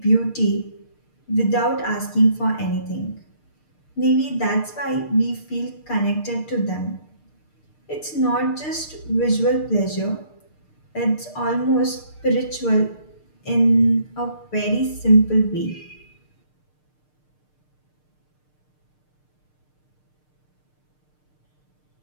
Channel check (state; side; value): late; right; 6.6 ms